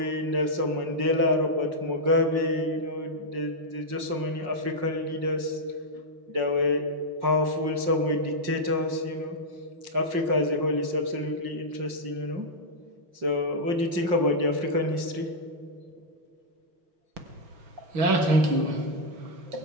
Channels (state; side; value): late; left; 5.6 ms